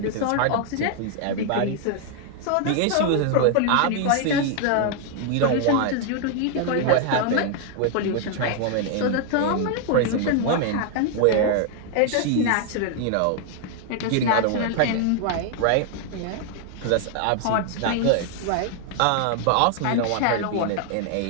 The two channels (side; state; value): both; different; correlation 0.00